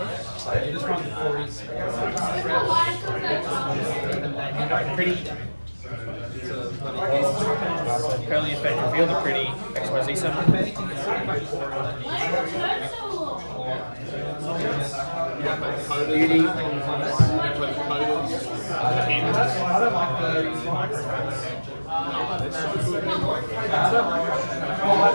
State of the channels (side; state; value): both; inverted; correlation -1.00